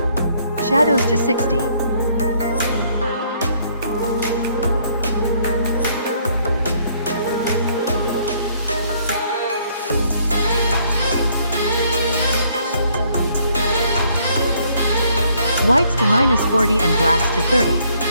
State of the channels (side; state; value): both; inverted; correlation -0.66